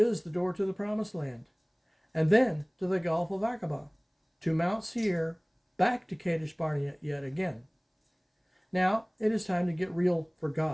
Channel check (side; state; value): both; identical; correlation 1.00